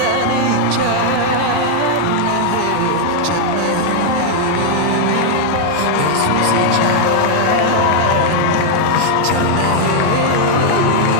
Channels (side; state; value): both; different; correlation -0.01